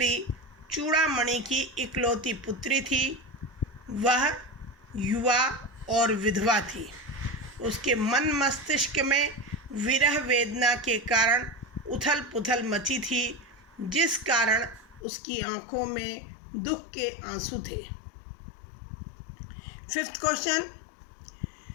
चूड़ामणि की इकलौती पुत्री थी। वह युवा और विधवा थी। उसके मन मस्तिष्क में विरह वेदना के कारण उथल पुथल मची थी, जिस कारण उसकी आंखों में दुख के आंसू थे। 5th क्वेश्चन,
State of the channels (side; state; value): right; drops out; at 15.0 s